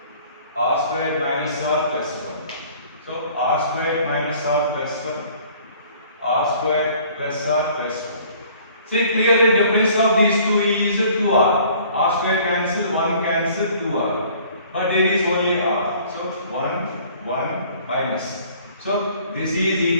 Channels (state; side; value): inverted; both; correlation -0.54